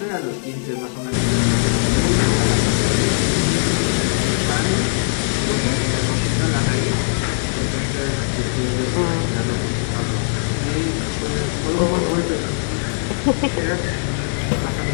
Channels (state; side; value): silent; right; 63 dB below the other